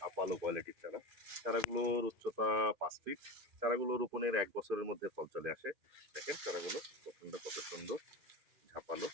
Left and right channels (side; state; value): left; late; 2.5 ms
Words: কোয়ালিটির চারা। চারাগুলোর উচ্চতা 5 ফিট। চারাগুলো রোপণের 1 বছরের মধ্যে ফল চলে আসে। দেখেন চারাগুলো গঠনটা কত সুন্দর, ঝাপালো।